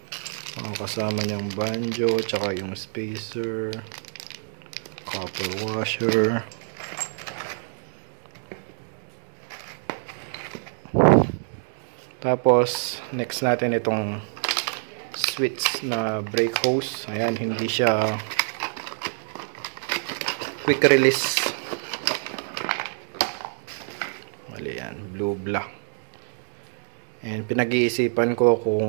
Kasama niyang banjo, tsaka yung spacer, copper washer. Tapos next natin itong switch na brake hose. Ayan, hindi siya quick release. Mali yan, blue black. And pinag-iisipan ko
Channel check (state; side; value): silent; left; 58 dB below the other